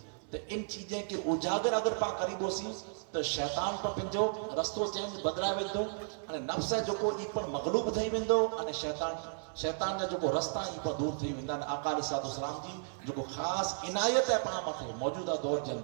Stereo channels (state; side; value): silent; left; digital silence